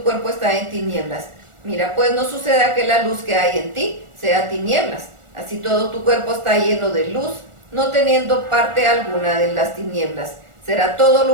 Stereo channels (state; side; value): late; left; 1.4 ms